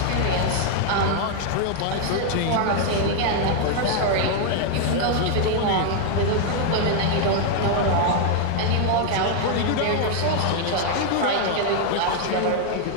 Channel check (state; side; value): different; both; correlation 0.00